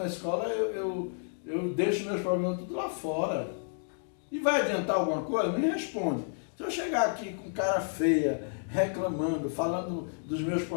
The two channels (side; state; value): right; silent; digital silence